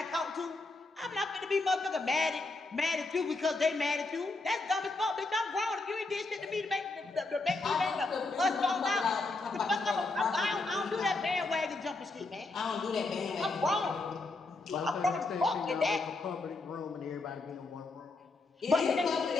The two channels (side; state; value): right; quieter; 3.4 dB